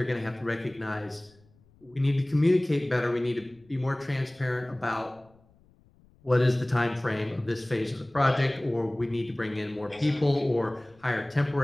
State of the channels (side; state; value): left; noise; rumble, 30 dB below the sound